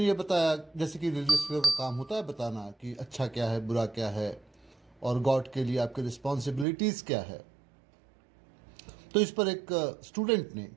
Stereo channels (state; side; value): drops out; left; at 6.7 s